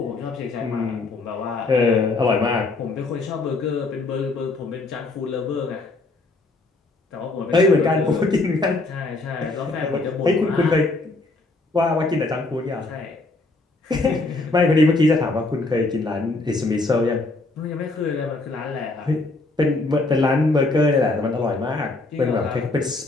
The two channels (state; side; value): quieter; right; 3.2 dB